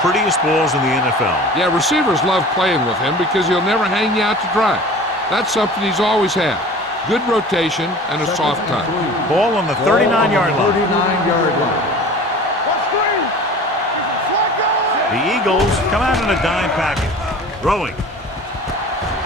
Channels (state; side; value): normal; both; correlation 0.41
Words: balls in the NFL. Yeah, receivers love playing with him because he'll never hang you out to dry. That's something he's always had. Good rotation and a soft touch. Ball on the 39-yard line. 39-yard line. What's green? Is it Flacco? The Eagles come out in a dime package. Throwing.